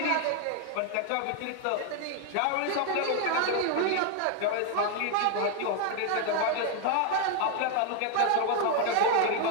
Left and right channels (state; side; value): different; both; correlation 0.01